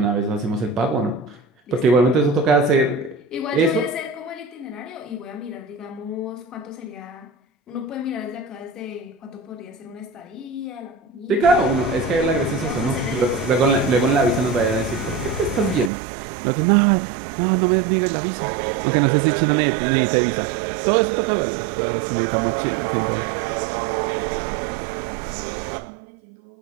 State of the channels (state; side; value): drops out; left; at 15.9 s